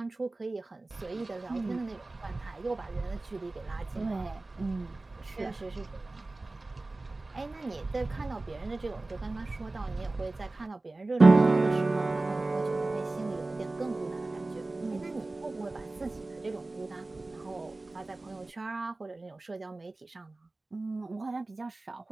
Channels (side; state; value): left; quieter; 3.1 dB